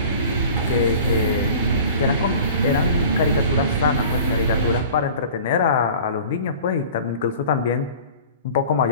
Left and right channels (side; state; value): both; inverted; correlation -0.44